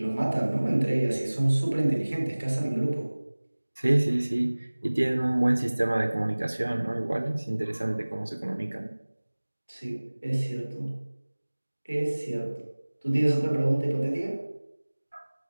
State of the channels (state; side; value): inverted; both; correlation -1.00